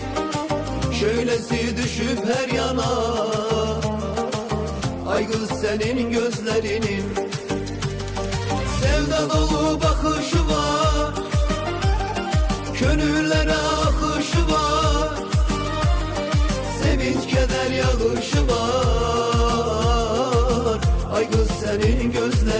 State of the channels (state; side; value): identical; both; correlation 1.00